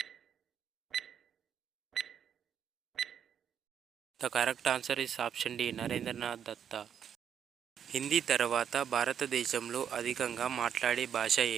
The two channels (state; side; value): quieter; left; 8.4 dB